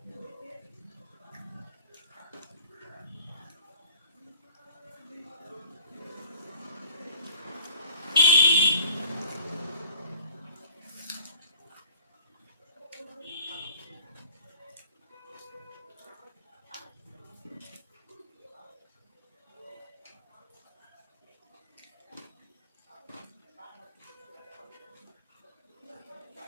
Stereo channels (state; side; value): inverted; both; correlation -0.47